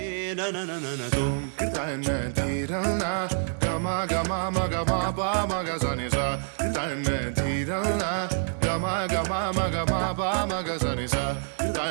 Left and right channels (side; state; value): left; silent; digital silence